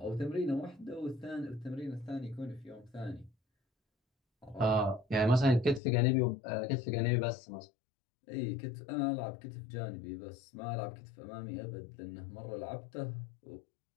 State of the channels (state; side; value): drops out; right; at 5.8 s